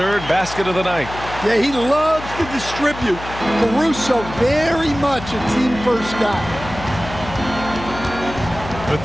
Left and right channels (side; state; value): left; noise; hum, 12 dB below the sound